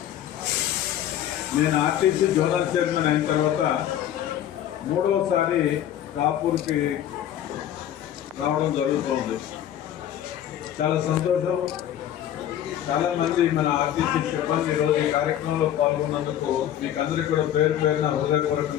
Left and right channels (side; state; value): right; quieter; 11.1 dB